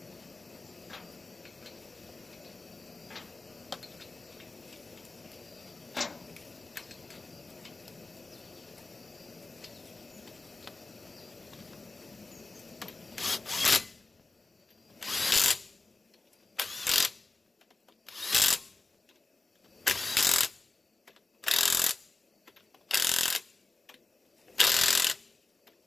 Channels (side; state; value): right; quieter; 3.4 dB